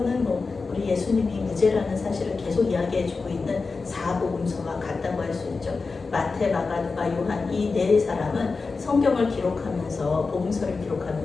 우리 예수님이 무죄라는 사실을 계속 이야기해주고 있는 사복음서와 같다고 할 수 있죠. 마태, 마가, 누가, 요한 이 네 사람은 성경을 기록하면서 복음서를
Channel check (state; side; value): quieter; right; 4.3 dB